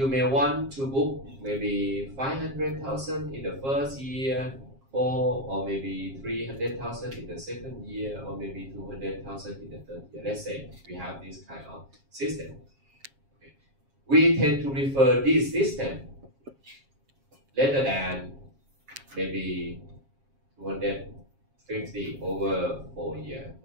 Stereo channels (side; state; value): left; late; 7.4 ms